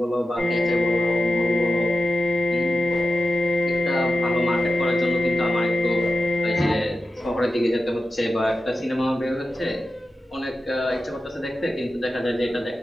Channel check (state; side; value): normal; both; correlation 0.91